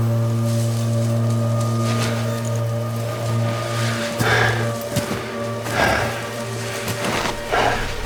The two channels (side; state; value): both; identical; correlation 1.00